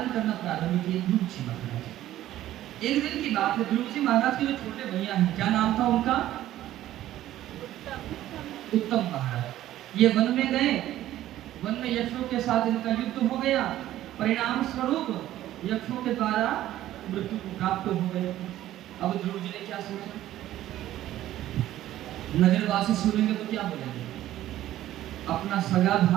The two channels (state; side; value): quieter; left; 13.6 dB